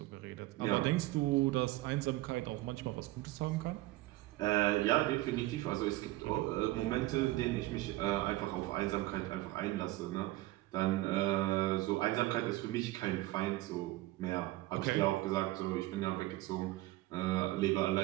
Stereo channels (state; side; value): quieter; left; 18.0 dB